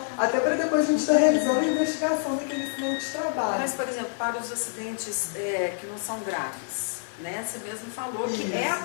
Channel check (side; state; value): right; silent; 60 dB below the other